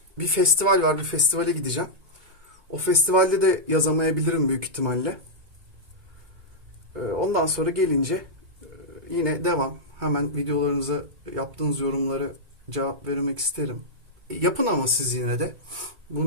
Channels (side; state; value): left; late; 2.3 ms